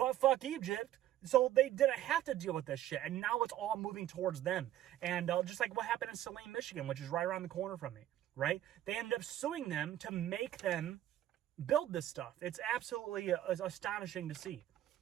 Egypt, so they didn't have to deal with this shit, and now it's all moving towards them. And just like what happened in Saline, Michigan, which is right around the corner from me, right? They ended up suing them to make them build this stuff. It's absolutely astonishing to see.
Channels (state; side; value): quieter; left; 12.8 dB